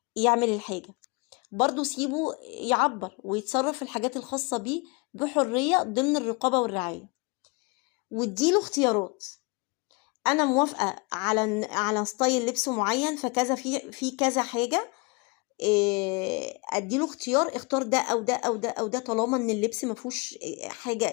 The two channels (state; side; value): quieter; right; 29.3 dB